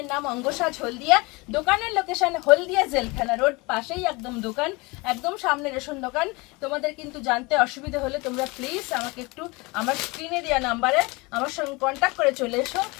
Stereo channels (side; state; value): right; quieter; 25.5 dB